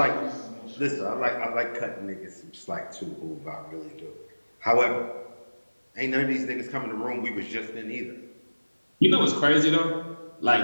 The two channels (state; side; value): inverted; both; correlation -1.00